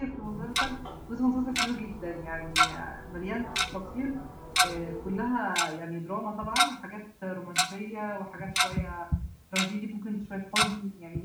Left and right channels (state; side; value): identical; both; correlation 1.00